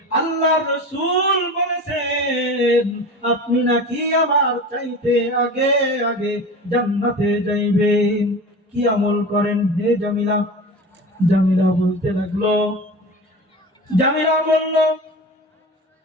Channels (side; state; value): both; normal; correlation 0.33